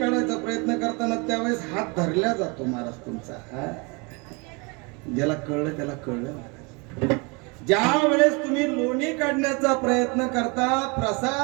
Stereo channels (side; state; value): left; quieter; 29.8 dB